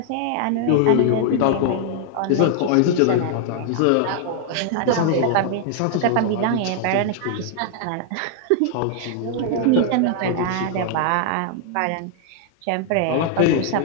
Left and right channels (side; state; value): both; different; correlation 0.00